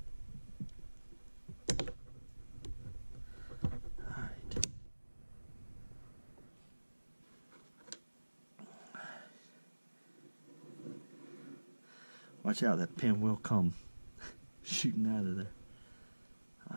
Alright. Watch out, that pin will come shooting out of there.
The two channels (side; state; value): both; inverted; correlation -1.00